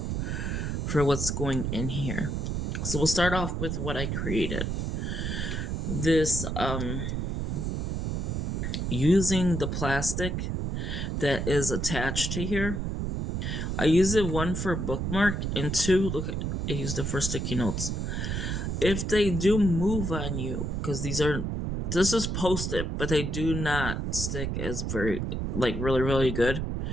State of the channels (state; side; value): noise; right; rumble, 2 dB below the sound